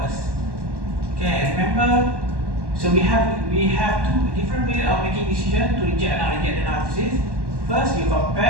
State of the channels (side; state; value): left; late; 1.1 ms